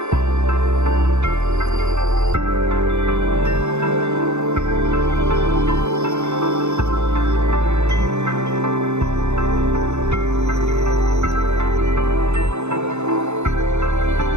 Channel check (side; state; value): left; late; 0.82 ms